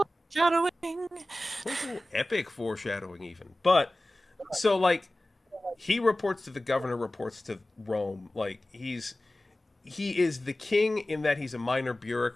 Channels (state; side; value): normal; both; correlation 0.97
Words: It's a little epic foreshadowing even. But so like he reports to the governor, reports to Rome. Like he is the king in that he's a minor